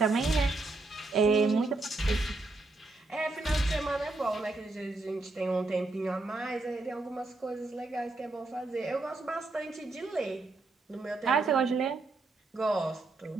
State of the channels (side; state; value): left; quieter; 3.2 dB